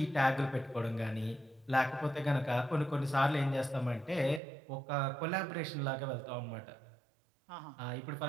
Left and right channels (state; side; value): drops out; left; at 4.4 s